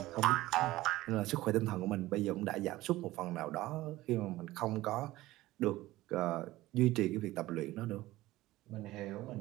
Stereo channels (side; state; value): left; quieter; 17.3 dB